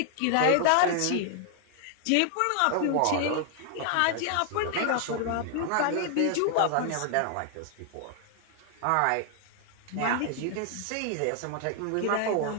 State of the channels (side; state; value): both; different; correlation 0.00